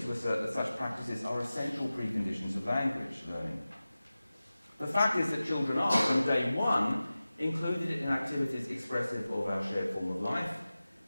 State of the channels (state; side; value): inverted; both; correlation -0.96